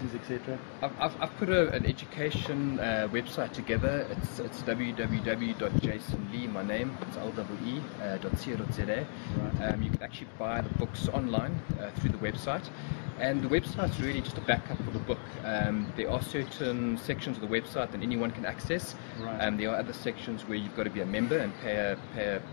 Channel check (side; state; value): right; silent; digital silence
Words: etc.? I've put an education website together. It's www.jasonlee, my name, it's LEE.co.za. Right. You can actually buy the books online through the website. And the website's really just a backup for the book. There are certain sections of the website that anyone can access. Right. There are other sections where you've got to be a member and pay